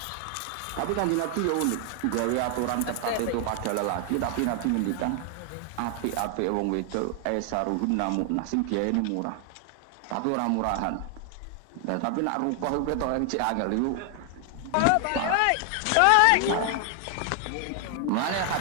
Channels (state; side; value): different; both; correlation 0.00